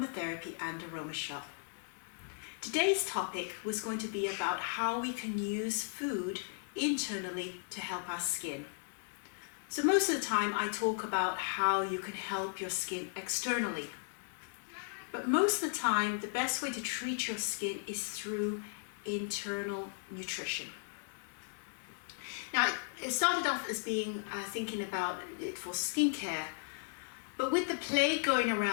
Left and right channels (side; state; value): right; silent; digital silence